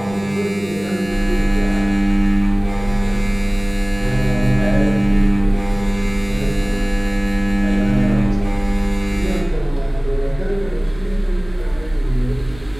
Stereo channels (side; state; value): right; noise; rumble, 19 dB below the sound